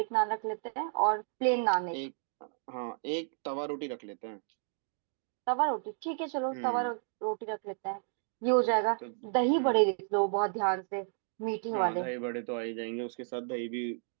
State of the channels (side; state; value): left; silent; 56 dB below the other